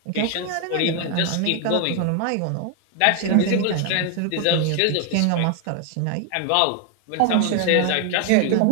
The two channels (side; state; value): both; different; correlation 0.01